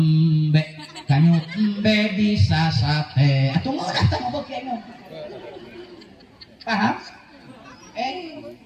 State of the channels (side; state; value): both; identical; correlation 1.00